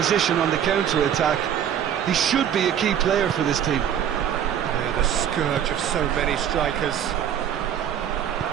on the counter-attack. He should be a key player for this team. Yeah, the scourge of so many strikers.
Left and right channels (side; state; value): left; quieter; 9.5 dB